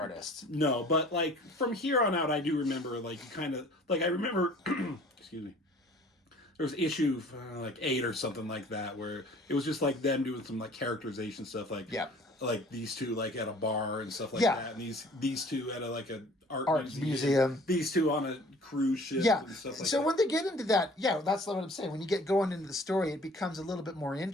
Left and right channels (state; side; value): normal; both; correlation 0.50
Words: No, but like from here on out, I do remember like kind of like I remember excuse me. There was issue like 8 or something like that where it was just like them doing some like characterization stuff, like like these two like at a bar and stuff like that, and these two at a art museum, these two on a cruise ship, and stuff like so that. when they get into that, that's what I'm saying. When you get going into the story, it becomes a little bit more